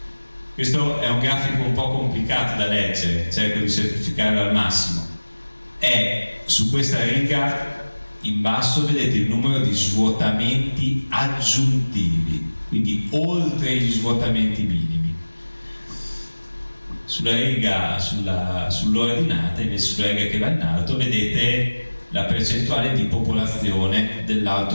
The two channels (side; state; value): both; inverted; correlation -1.00